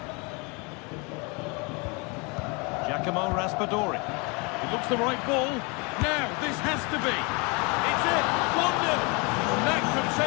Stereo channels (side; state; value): right; quieter; 30.2 dB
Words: Giacomo Raspadori. It looks the right ball. Now, this has to be. It's it. 1-0. That could